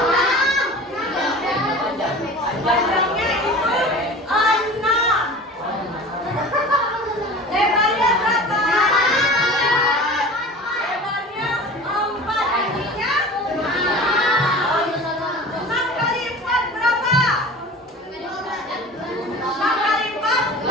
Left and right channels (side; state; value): both; normal; correlation 0.38